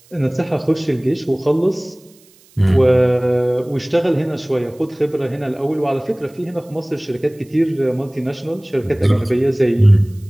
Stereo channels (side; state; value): right; noise; hiss, 29 dB below the sound